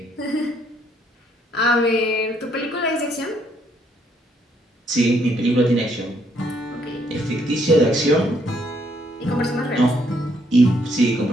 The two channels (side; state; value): both; normal; correlation 0.70